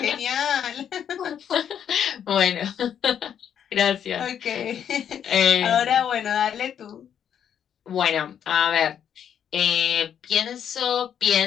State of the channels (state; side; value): quieter; right; 8.9 dB